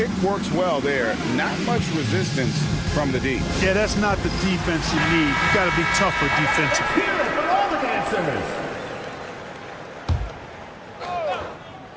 works well there. Not much resistance from the D. Yeah, that's not the defense you need. You got to be tougher defensively. Here for all the dancers.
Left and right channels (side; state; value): both; identical; correlation 1.00